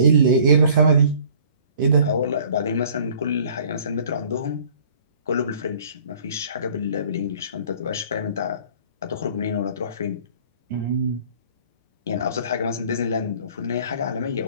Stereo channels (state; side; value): inverted; both; correlation -0.53